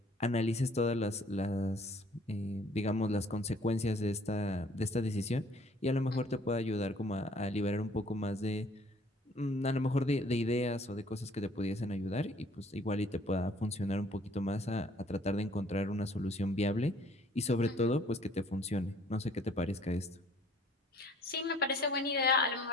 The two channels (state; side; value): normal; both; correlation 0.57